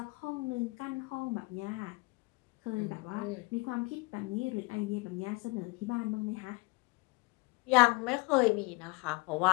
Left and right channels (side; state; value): right; quieter; 26.6 dB